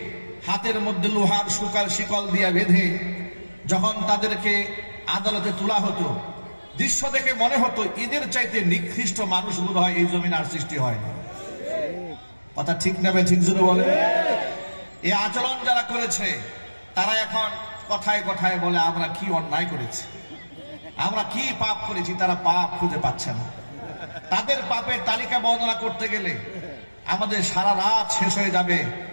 হাতের মধ্যে লোহার শিকল দিয়ে বেঁধে যখন তাদেরকে আদালতে তোলা হতো, দৃশ্য দেখে মনে হতো এদের চাইতে নিকৃষ্ট মানুষ বোধ হয় এই জমিন আর সৃষ্টি হয় না। কথা ঠিক না? ঠিক জোরে বলে। এই আচরণ যারা করেছে তারা এখন কথায় কথায় বলে আমরা কি অন্যায় করেছি, আমরা কি পাপ করেছি, তারা পাপ খুঁজে পাচ্ছে না। তাদের পাপের তালিকা বর্ণনা করতে গেলে আমাদের সারা রাত শেষ হয়ে যাবে,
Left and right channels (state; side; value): inverted; both; correlation -1.00